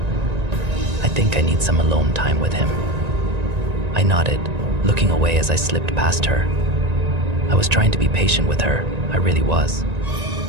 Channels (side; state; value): left; late; 1.9 ms